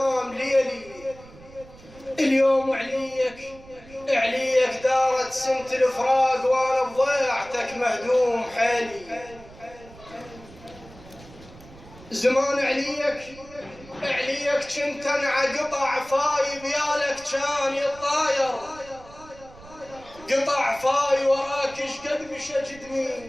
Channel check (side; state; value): right; noise; rumble, 21 dB below the sound